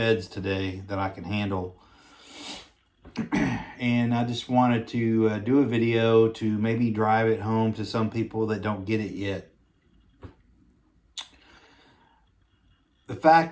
today that I can handle. And I just wanted to do a video to maybe drive it home to some people that don't get it yet. The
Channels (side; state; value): both; identical; correlation 1.00